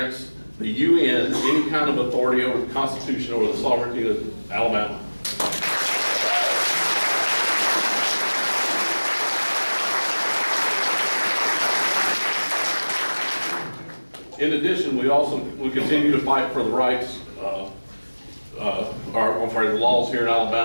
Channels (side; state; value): both; inverted; correlation -1.00